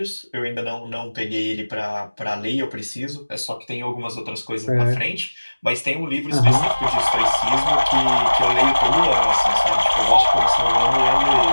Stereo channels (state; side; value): inverted; both; correlation -1.00